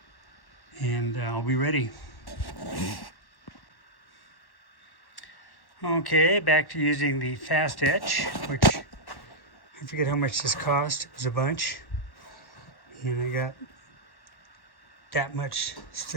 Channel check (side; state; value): right; late; 1.1 ms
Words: And I'll be ready. Okay, back to using the fast etch, which I forget how much this cost. It was a bunch. And I got that much